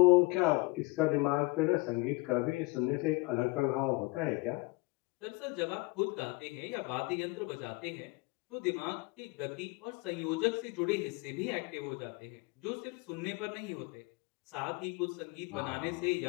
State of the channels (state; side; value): quieter; right; 25.2 dB